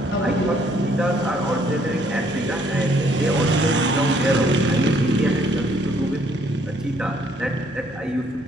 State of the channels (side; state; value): both; normal; correlation 0.65